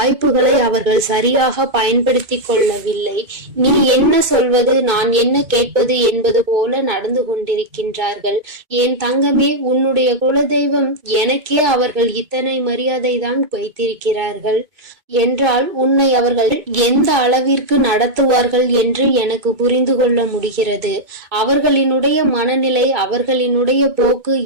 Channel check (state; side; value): late; left; 2.3 ms